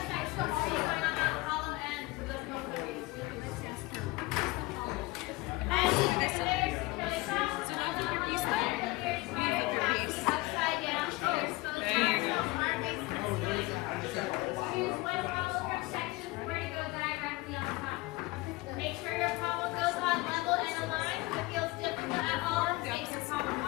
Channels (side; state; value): right; quieter; 21.3 dB